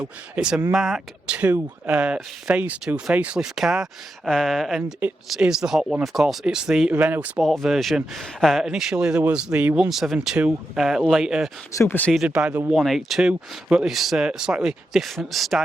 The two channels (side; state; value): both; normal; correlation 0.87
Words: It's a Mark II Phase 2 facelift car, and it is the hot one, of course. It's the Renault Sport version. Initially there was the 172, later superseded by the 182, but this slightly different